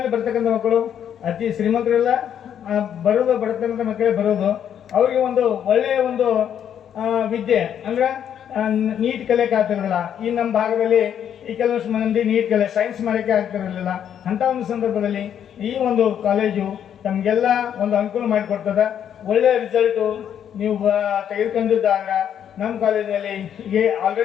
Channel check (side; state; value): right; quieter; 9.2 dB